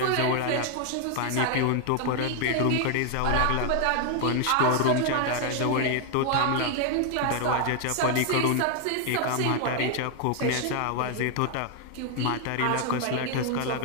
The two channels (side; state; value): both; different; correlation 0.00